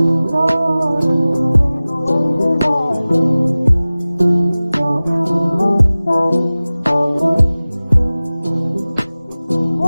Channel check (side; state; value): both; inverted; correlation -0.98